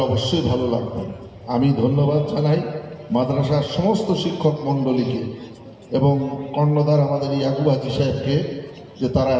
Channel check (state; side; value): identical; both; correlation 1.00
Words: অবশ্যই ভালো লাগবে। আমি ধন্যবাদ জানাই মাদ্রাসার সমস্ত শিক্ষক মণ্ডলীকে এবং কর্ণধার আমাদের ইয়াকুব হাজি সাহেবকে, যে তারা